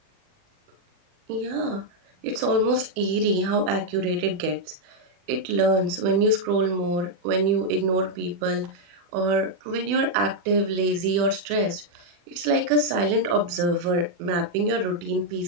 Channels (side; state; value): left; late; 40 ms